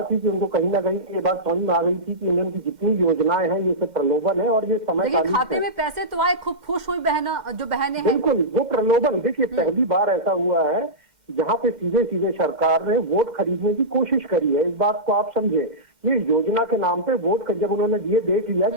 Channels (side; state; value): left; late; 6.6 ms